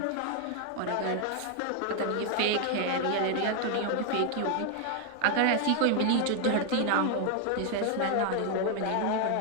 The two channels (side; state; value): both; different; correlation 0.00